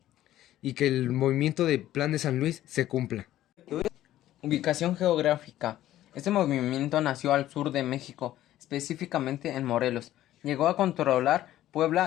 y que el movimiento del Plan de San Luis se cumpla. Ubicación geográfica. Este movimiento nació al sur de México, específicamente en Morelos. Llegó a controlar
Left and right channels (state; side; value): quieter; right; 13.6 dB